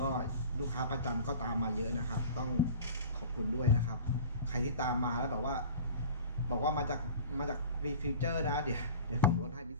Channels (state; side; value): inverted; both; correlation -0.40